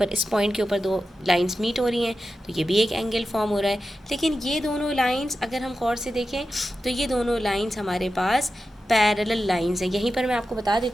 इस पॉइंट के ऊपर दो लाइंस मीट हो रही हैं, तो ये भी एक एंगल फॉर्म हो रहा है। लेकिन ये दोनों लाइंस अगर हम गौर से देखें तो ये दोनों लाइंस हमारे पास पैरेलल लाइंस हैं। यहीं पर मैं आपको बता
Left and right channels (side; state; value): both; normal; correlation 0.92